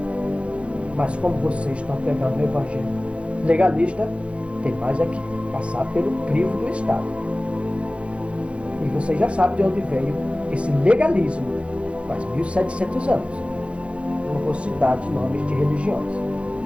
Mas como vocês estão pegando o Evangelho legalista, tem mais aqui, passar pelo crivo do Estado. E vocês já sabem de onde veio esse legalismo, faz 1700 anos. Não vou citar de nomes de religiões.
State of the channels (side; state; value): left; late; 0.060 ms